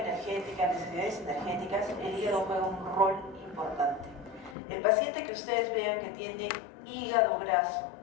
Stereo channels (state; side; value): drops out; right; at 4.5 s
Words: necesidades energéticas, el hígado juega un rol importante. El paciente que ustedes vean que tiene hígado graso,